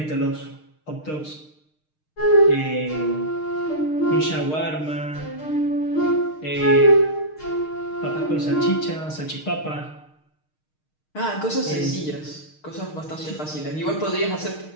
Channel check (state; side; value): late; right; 6.5 ms